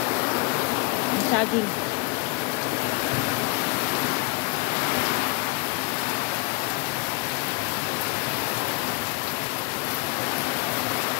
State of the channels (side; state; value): right; quieter; 25.3 dB